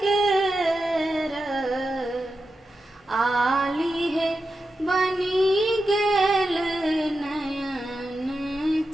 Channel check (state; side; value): normal; both; correlation 0.90